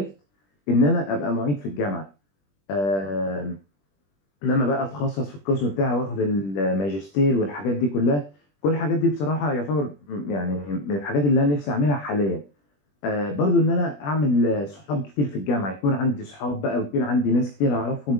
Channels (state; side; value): late; right; 21 ms